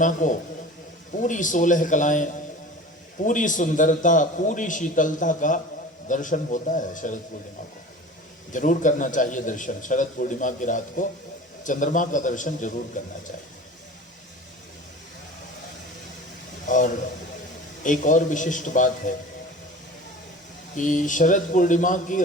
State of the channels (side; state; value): both; normal; correlation 0.38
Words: को पूरी 16 कलाएं, पूरी सुंदरता, पूरी शीतलता का दर्शन होता है। शरद पूर्णिमा को जरूर करना चाहिए दर्शन। शरद पूर्णिमा की रात को चंद्रमा का दर्शन जरूर करना चाहिए। और एक और विशिष्ट बात है कि शरद पूर्णिमा की